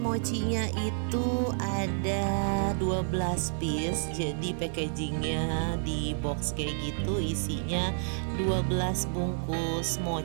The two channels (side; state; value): left; silent; digital silence